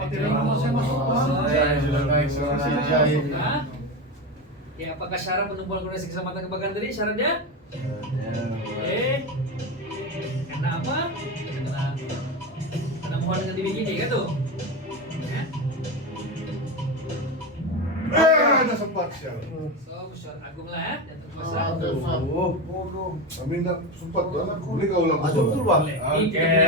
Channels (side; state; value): both; normal; correlation 0.19